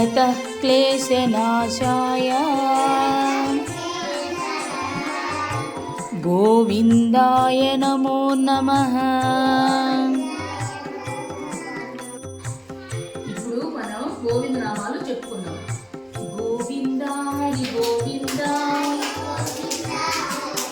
క్లేశనాశాయ గోవిందాయ నమో నమః. ఇప్పుడు మనం గోవింద నామాలు చెప్పుకుందాం. గోవింద హరి గోవింద,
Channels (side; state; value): both; identical; correlation 1.00